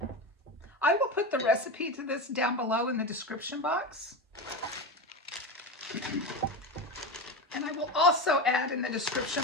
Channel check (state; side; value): normal; both; correlation 0.20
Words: I will put the recipe to this down below in the description box. And I will also add in the description